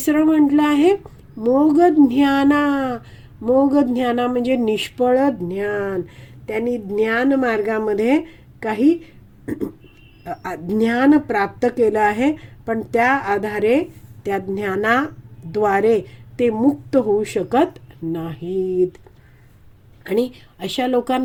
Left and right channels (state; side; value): identical; both; correlation 1.00